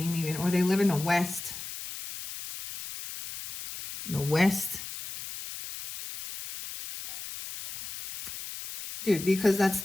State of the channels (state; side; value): noise; left; hiss, 10 dB below the sound